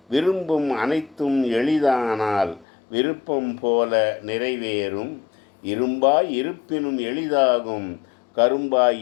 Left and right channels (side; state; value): right; drops out; at 2.7 s